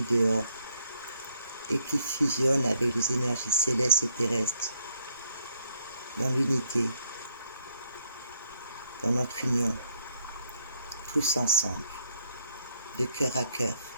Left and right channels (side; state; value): both; inverted; correlation -0.72